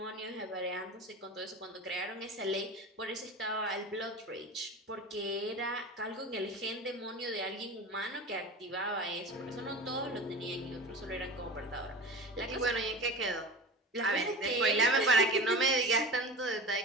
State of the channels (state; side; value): normal; both; correlation 0.32